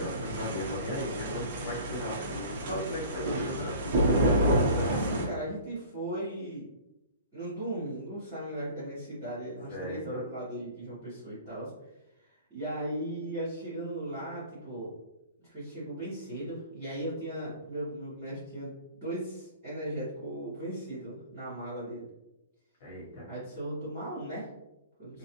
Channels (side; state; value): both; inverted; correlation -0.43